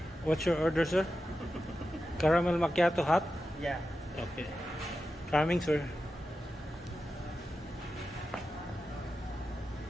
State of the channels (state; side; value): normal; both; correlation 0.91